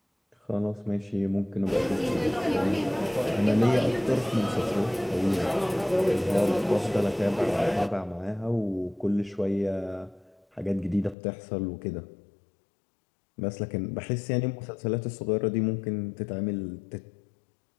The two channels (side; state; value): right; drops out; at 11.2 s